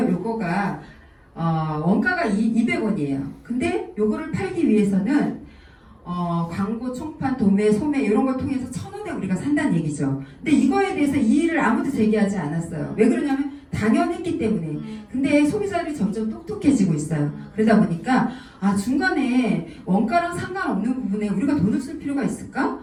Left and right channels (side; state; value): both; identical; correlation 1.00